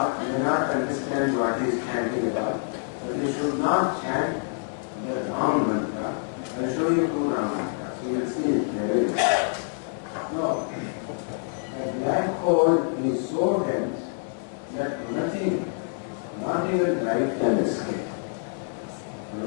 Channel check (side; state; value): right; silent; 61 dB below the other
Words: not understand what he is chanting about, but you should not chant the wrong mantra. I will show you two wrong mantras. You will see it very well. No. A black hole is so dense that nothing, not even light, can escape.